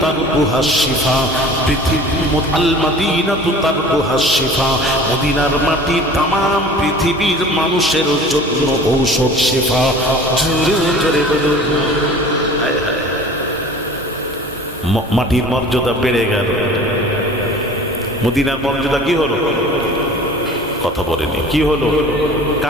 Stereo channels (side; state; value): both; normal; correlation 0.43